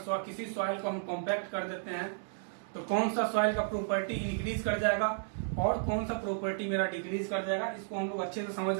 किसी सॉइल को हम कॉम्पैक्ट कर देते हैं तो कौन सा सॉइल का प्रॉपर्टी इंक्रीज कर जाएगा और कौन सा प्रॉपर्टी मेरा डिक्रीज कर जाएगा। इसको हम लोग अच्छे से समझ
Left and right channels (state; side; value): silent; left; digital silence